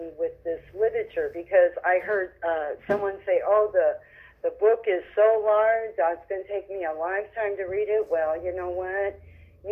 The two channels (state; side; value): identical; both; correlation 1.00